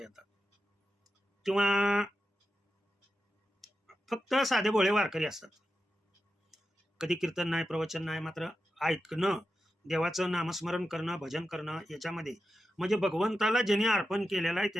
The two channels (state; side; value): normal; both; correlation 0.90